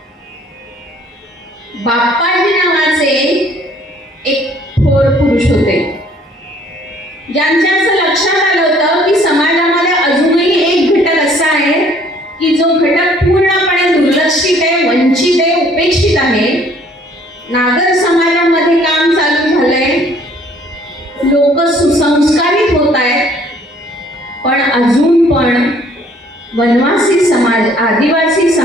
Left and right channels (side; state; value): both; normal; correlation 0.59